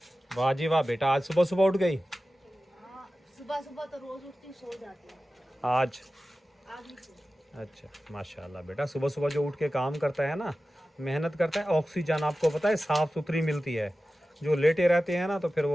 है। वाह जी वाह बेटा, आज सुबह सुबह उठ गई? सुबह सुबह तो रोज़ उठती सो जाती है, आज नहीं सो। अच्छा माशाल्लाह बेटा, सुबह सुबह जो उठ के काम करता है ना, मेहनत करता है, ऑक्सीजन आपको पता है साफ़ सुथरी मिलती है। जो लेटे रहते हैं ना तो फिर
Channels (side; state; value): both; normal; correlation 0.95